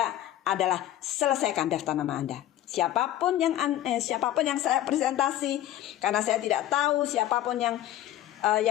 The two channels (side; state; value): right; quieter; 13.2 dB